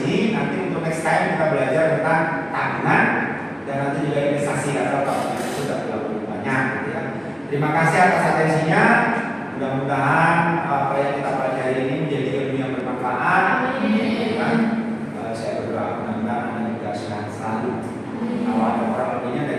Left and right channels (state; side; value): identical; both; correlation 1.00